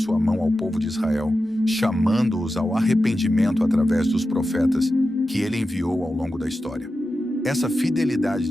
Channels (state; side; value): normal; both; correlation 0.92